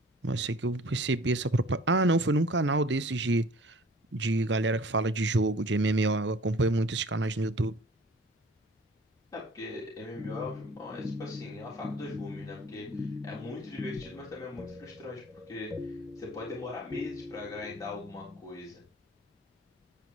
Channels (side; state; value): both; normal; correlation 0.49